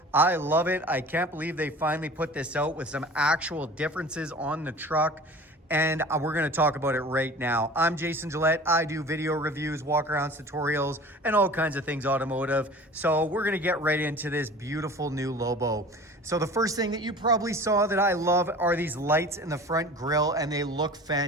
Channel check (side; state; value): both; normal; correlation 0.41